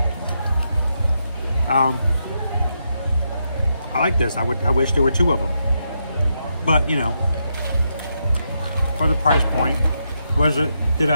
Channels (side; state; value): both; inverted; correlation -0.82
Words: I like this. I wish there were 2 of them. But, for the price point, did